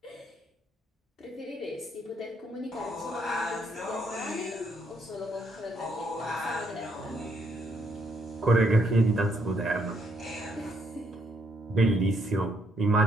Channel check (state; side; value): normal; both; correlation 0.72